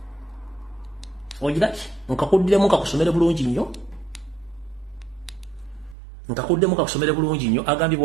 ojiraki nkakuddemu kakusomere bulungi nnyo agambe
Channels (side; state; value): left; drops out; at 6.0 s